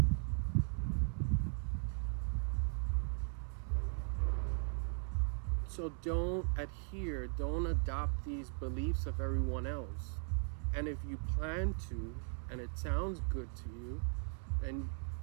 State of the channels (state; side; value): silent; left; 52 dB below the other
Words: So don't adopt these beliefs of everyone else. And if you plan to, and it sounds good to you, then